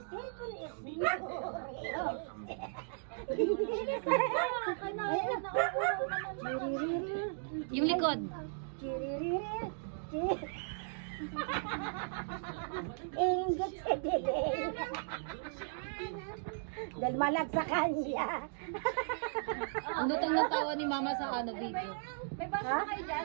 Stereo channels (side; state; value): left; silent; digital silence